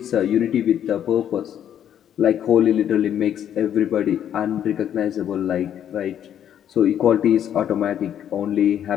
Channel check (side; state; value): right; quieter; 9.9 dB